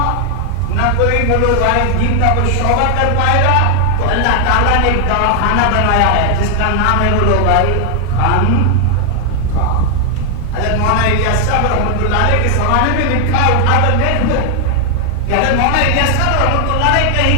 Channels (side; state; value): both; different; correlation 0.00